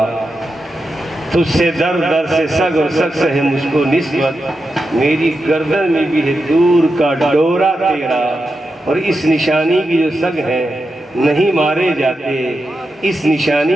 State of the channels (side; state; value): both; normal; correlation 0.88